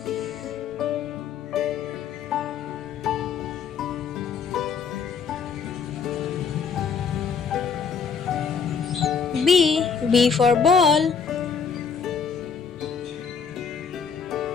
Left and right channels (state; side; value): quieter; right; 6.1 dB